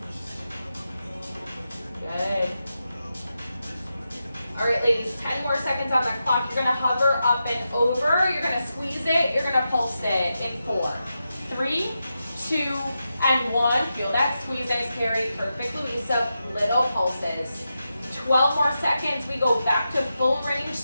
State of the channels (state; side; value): inverted; both; correlation -0.89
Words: Good. All right, ladies, 10 more seconds on the clock. You're gonna hover up and over. You're gonna squeeze it. You're gonna pulse it in 4, 3, 2, and 1. Feel that squeeze. Nice carry. Perfect, Luisa. Little pulses. 12 more seconds. We go back to full range,